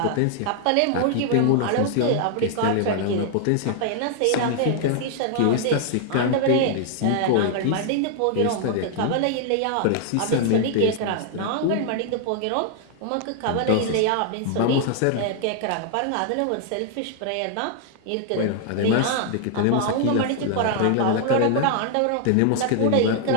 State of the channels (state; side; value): different; both; correlation 0.00